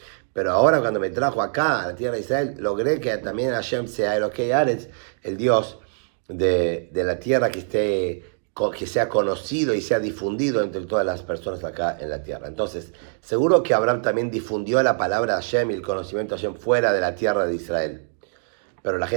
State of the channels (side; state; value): left; silent; 63 dB below the other